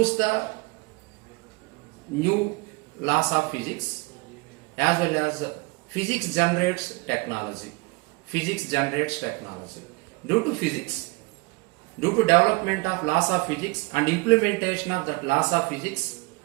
the new laws of physics, as well as physics generates technology. Physics generates technology. Due to physics, due to development of laws of physics and implementation of that laws of physics,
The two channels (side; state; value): left; quieter; 26.9 dB